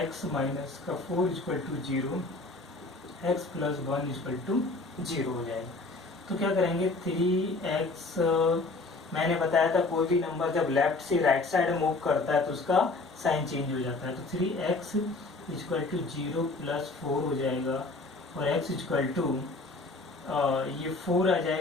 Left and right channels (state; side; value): quieter; right; 3.4 dB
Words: माइनस का 4 equal to 0, x plus 1 equal to 0 हो जाएगा। तो क्या करेंगे, 3x, मैंने बताया था कोई भी नंबर जब लेफ्ट से राइट साइड मूव करता है तो उसका साइन चेंज हो जाता है, तो 3x इक्वल टू 0 प्लस 4 हो जाएगा, और x इक्वल टू ये 4 आ